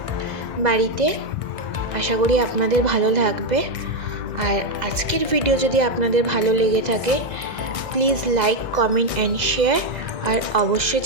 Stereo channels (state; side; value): late; left; 2.0 ms